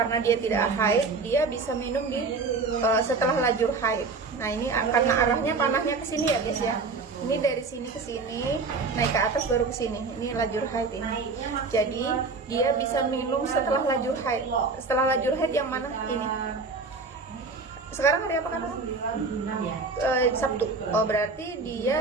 dia tidak haid, dia bisa minum di setelah lajur haid. Nah ini karena arahnya panahnya ke sini ya guys ya. Ini dari sini ke sini, naik ke atas baru ke sini. Ini lajur haid ini. Jadi dia bisa minum setelah lajur haid. Setelah lajur haid yang mana? Ini. Sekarang hari apa kan? Sabtu. Oh berarti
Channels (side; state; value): left; quieter; 4.2 dB